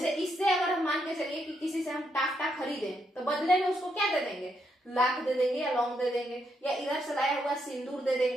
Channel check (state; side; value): normal; both; correlation 0.78